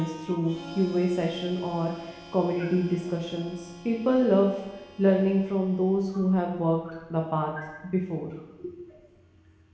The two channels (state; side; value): identical; both; correlation 1.00